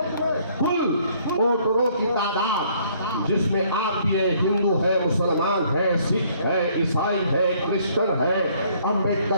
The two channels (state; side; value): inverted; both; correlation -0.63